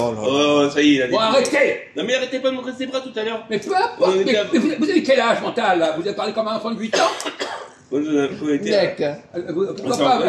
là là. oh, ça y est, il a dit. Bon, arrêtez! Non, mais arrêtez pas de montrer ses bras tout à l'heure. Mais peu importe, Ouais, mais vous avez quel âge mental, là? Vous avez parlé comme un enfant de 8 ans? On a connecté. Mec, Pourquoi pas?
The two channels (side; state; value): both; identical; correlation 1.00